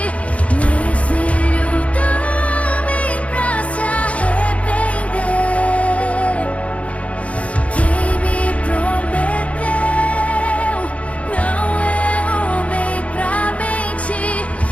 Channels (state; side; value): late; right; 0.065 ms